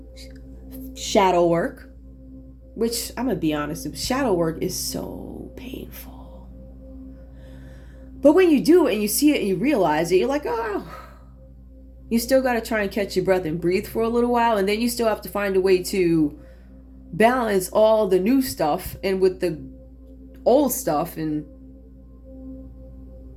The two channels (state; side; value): identical; both; correlation 1.00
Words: Shadow work. Which, I'm going to be honest, shadow work is so painful. But when you do it and you see it and you realize it, you're like, oh. You still got to try and catch your breath and breathe for a little while. And then you still have to find a way to balance all the new stuff and with the old stuff and